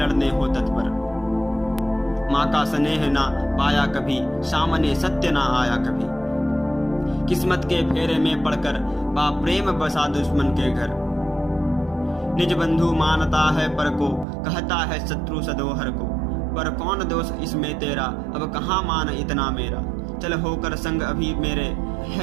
हो तत्पर। माँ का स्नेह ना पाया कभी, सामने सत्य ना आया कभी। किस्मत के फेरे में पड़कर, बा प्रेम बसा दुश्मन के घर। निज बंधु मानता है पर को, कहता है शत्रु सदोहर को। पर कौन दोष इसमें तेरा, अब कहाँ मान इतना मेरा। चल होकर संग अभी मेरे,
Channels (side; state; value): left; drops out; at 14.2 s